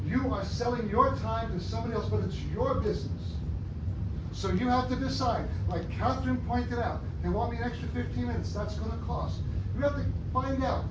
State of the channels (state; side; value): identical; both; correlation 1.00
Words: You are selling your time to somebody else, but it's your business. So you have to decide, like Catherine pointed out, they want me an extra 15 minutes, that's gonna cost. You have to find out,